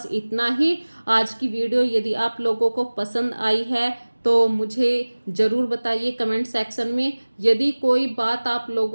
इतना ही। आज की वीडियो यदि आप लोगों को पसंद आई है तो मुझे ज़रूर बताइए कमेंट सेक्शन में। यदि कोई बात आप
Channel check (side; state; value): both; inverted; correlation -1.00